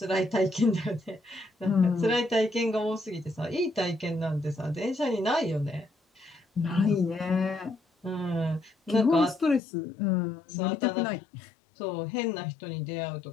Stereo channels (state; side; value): drops out; right; at 9.6 s